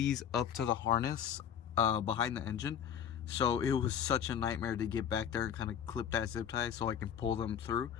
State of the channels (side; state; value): right; quieter; 8.8 dB